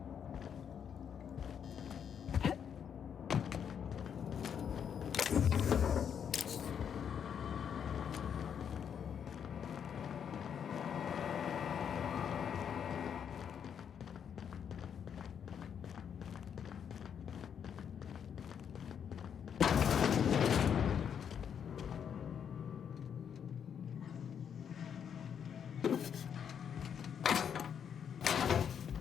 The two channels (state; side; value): quieter; right; 8.0 dB